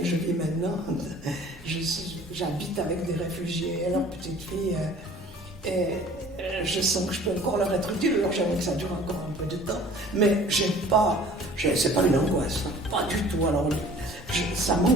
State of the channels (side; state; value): both; normal; correlation 0.49